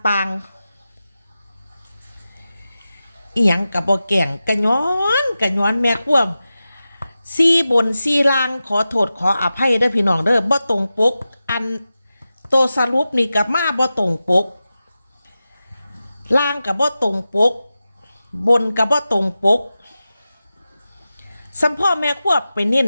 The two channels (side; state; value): both; inverted; correlation -0.94